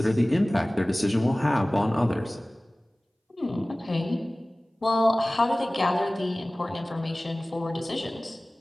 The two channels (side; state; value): both; normal; correlation 0.98